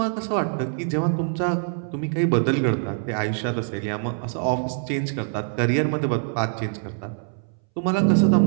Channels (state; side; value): silent; left; 63 dB below the other